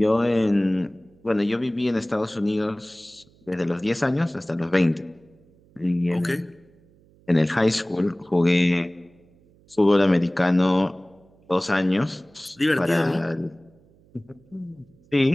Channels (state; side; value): noise; right; hum, 30 dB below the sound